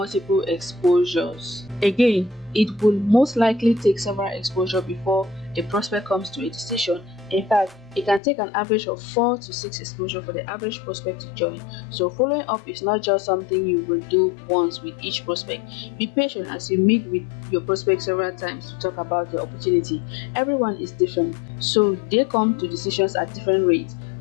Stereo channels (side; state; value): right; drops out; at 8.2 s